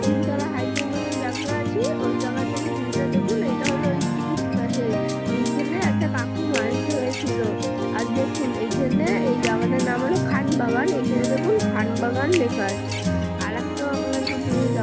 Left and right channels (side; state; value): both; identical; correlation 1.00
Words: তিনতলা হাইকিং জায়গা আছি ওই জায়গা থেকে ভিউটা দেখুন, এটা হলো ওই পাশে। এইখানে একটা কাকু মাছ ধরেছিল, আর দেখুন এইখানে এই